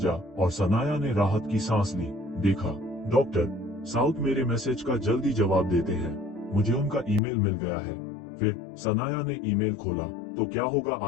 और सनाया ने राहत की सांस ली। देखा, डॉक्टर साउथ मेरे मैसेज का जल्दी जवाब देते हैं, मुझे उनका ईमेल मिल गया है। फिर सनाया ने ईमेल खोला। तो क्या होगा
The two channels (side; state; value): right; drops out; at 7.2 s